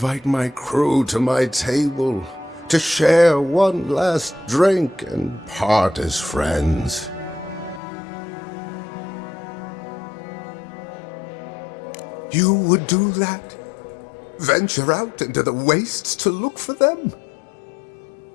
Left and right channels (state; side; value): drops out; right; at 7.8 s